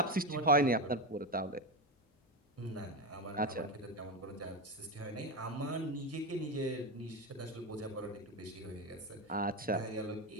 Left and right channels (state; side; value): normal; both; correlation 0.14